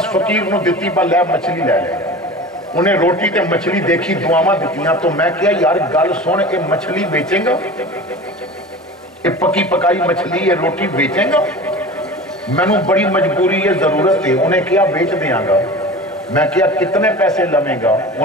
فقیر نوں دتی با لے مچھلی لے لے. انہیں روٹی تے مچھلی دیکھی, دعاواں دتیاں. تو میں کہا یار گل سن, اے مچھلی بیچیں گا, اے پکی پکائی مچھلی یہ روٹی بیچیں گا؟ مینوں بڑی مجبوری ہے, ضرورت ہے. انہیں کہا بیچ دیاں گا. میں کہا کتنے پیسے لویں گا؟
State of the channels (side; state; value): both; normal; correlation 0.35